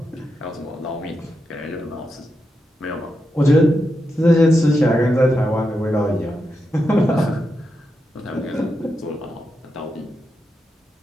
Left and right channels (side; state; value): both; normal; correlation 0.86